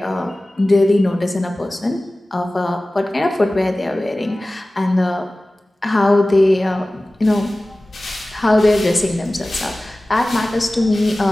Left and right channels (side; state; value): both; normal; correlation 0.97